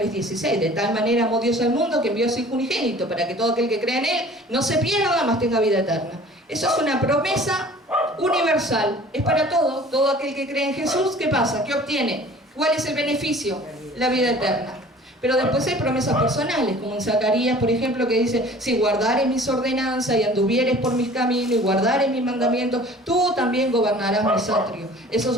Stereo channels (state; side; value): normal; both; correlation 0.47